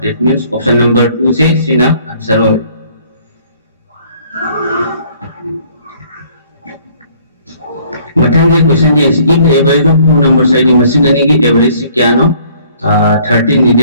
that means option number 2 से सीधा आंसर हो मथंगे क्वेश्चन ये if the average of two numbers है दी मसिंग अने की एवरेज से क्या नो 13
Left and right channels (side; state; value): both; inverted; correlation -0.59